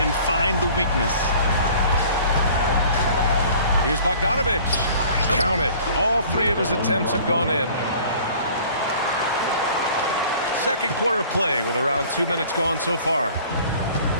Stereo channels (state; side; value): inverted; both; correlation -0.49